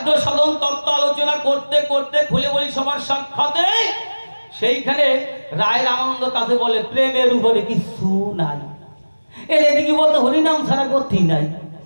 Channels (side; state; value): both; inverted; correlation -1.00